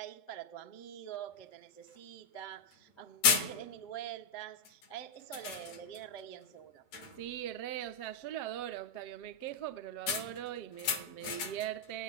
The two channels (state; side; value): late; right; 8.1 ms